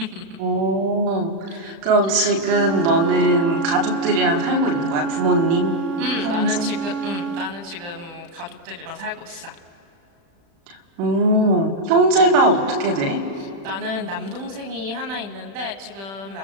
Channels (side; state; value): left; late; 36 ms